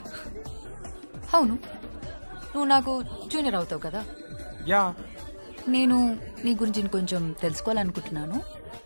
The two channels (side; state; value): both; inverted; correlation -1.00